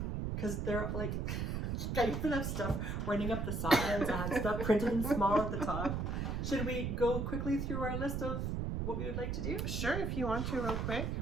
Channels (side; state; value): right; noise; rumble, 1 dB below the sound